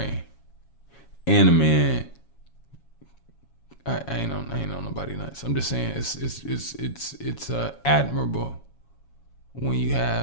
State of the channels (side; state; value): right; late; 7.2 ms